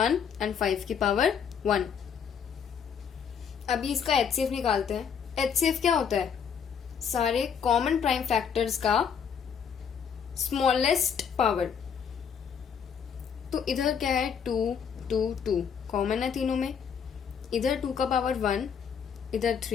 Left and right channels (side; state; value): right; quieter; 7.2 dB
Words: एंड 5 की पावर 1। अभी इसका HCF निकालते हैं। HCF क्या होता है? सारे कॉमन प्राइम फैक्टर्स का स्मॉलेस्ट पावर। तो इधर क्या है? 2 2 2 कॉमन है तीनों में। इधर 2 का पावर 1, इधर